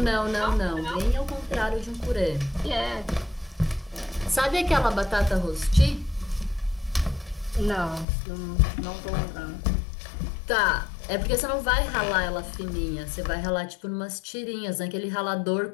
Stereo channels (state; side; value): drops out; right; at 8.1 s